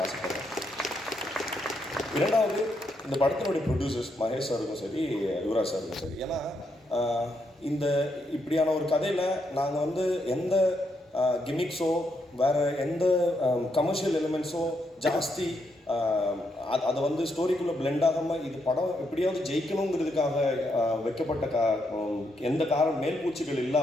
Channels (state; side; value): normal; both; correlation 0.79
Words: ஆசைப்படுறேன். இரண்டாவது, இந்த படத்தினுடைய ப்ரொடியூசர்ஸ் மகேஷ் சாருக்கும் சரி, யுவராஜ் சாருக்கும் சரி. ஏன்னா இந்த இப்படியான ஒரு கதையில் நாங்கள் வந்து எந்த கிமிக்ஸோ வேறு எந்த கமர்ஷியல் எலிமெண்ட்ஸோ ஜாஸ்தி அதை வந்து ஸ்டோரிக்குள்ளே பிளெண்ட் ஆகாமல் இது படம் எப்படியாவது ஜெயிக்கணுங்கிறதுக்காக வைக்கப்பட்ட எந்த மேல்பூச்சிகள்